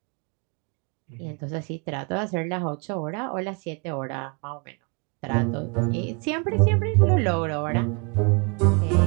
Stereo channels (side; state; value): left; quieter; 33.1 dB